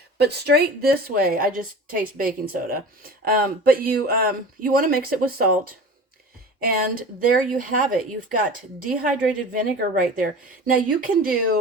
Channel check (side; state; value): both; normal; correlation 0.37